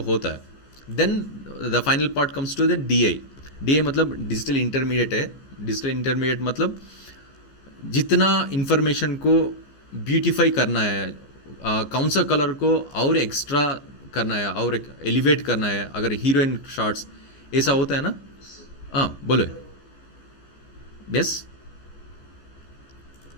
होता है. Then the final part comes to the DI. DI मतलब डिजिटल इंटरमीडिएट है. डिजिटल इंटरमीडिएट मतलब जितना इंफॉर्मेशन को ब्यूटीफाई करना है, कौन सा कलर को और एक्स्ट्रा करना है और एलिवेट करना है. अगर हीरोइन शॉट्स ऐसा होता है ना. हाँ बोलो. यस.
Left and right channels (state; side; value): late; right; 15 ms